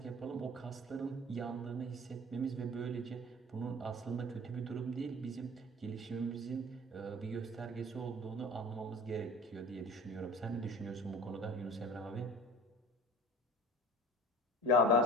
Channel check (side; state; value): both; normal; correlation 0.41